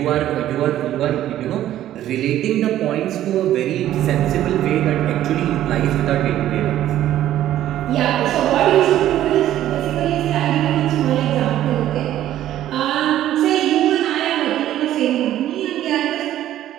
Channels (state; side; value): quieter; left; 12.7 dB